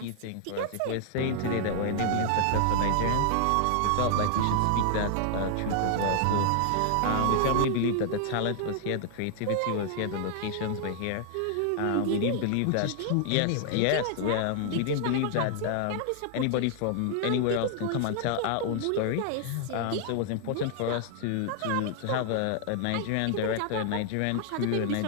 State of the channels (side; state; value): both; different; correlation 0.00